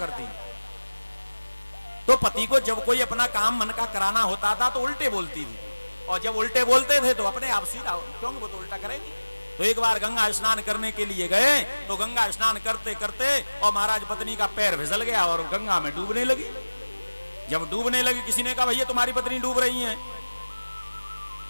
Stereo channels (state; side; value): inverted; both; correlation -1.00